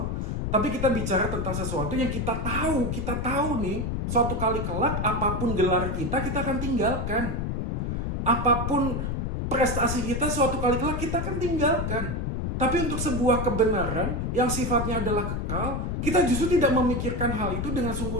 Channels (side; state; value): left; noise; rumble, 1 dB below the sound